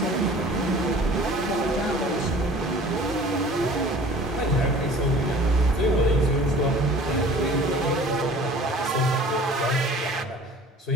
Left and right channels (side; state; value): both; normal; correlation 0.47